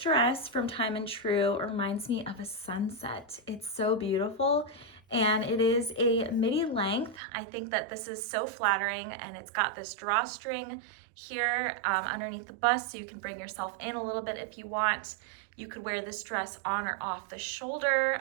from Time and True reminds me of a sunset. It's so beautiful, and it is a midi length. I think that this is so flattering, and it's got this drawstring here underneath the bust, so you can bring yourself in a little bit if you want. You could wear this dress on or off the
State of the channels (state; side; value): drops out; left; at 7.2 s